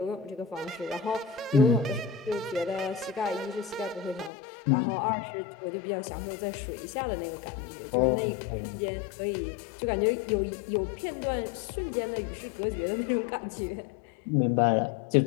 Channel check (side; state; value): right; drops out; at 4.3 s